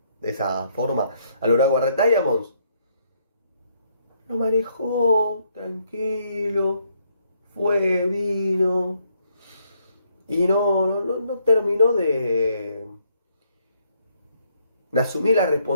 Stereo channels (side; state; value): both; inverted; correlation -0.72